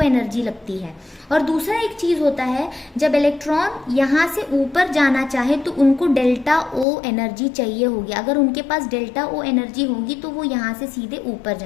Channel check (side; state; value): right; drops out; at 6.9 s